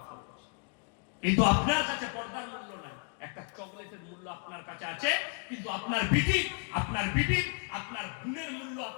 ফরজ, কিন্তু আপনার কাছে পর্দার মূল্য নাই। একটা চকলেটের মূল্য আপনার কাছে আছে, কিন্তু আপনার বিটির, আপনার গুণের মূল্য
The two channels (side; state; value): right; quieter; 39.1 dB